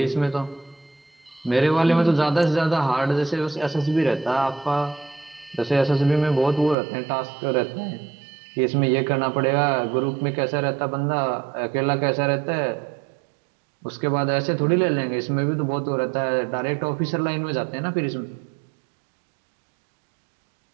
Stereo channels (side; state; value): left; drops out; at 6.8 s